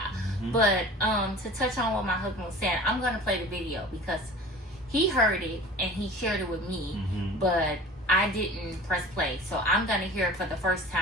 But to touch on what my husband was saying, I'm gonna play the video because he heard it and he shared it with me, but I didn't press play. So I'm gonna hear it for the first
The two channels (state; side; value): normal; both; correlation 0.41